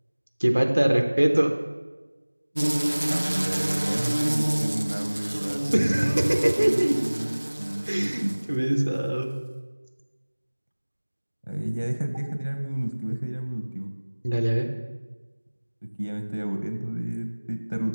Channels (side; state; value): both; inverted; correlation -1.00